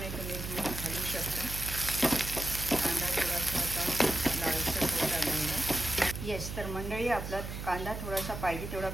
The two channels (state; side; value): noise; right; hum, 7 dB below the sound